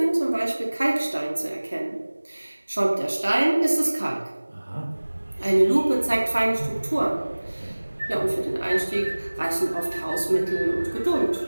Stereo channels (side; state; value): both; inverted; correlation -1.00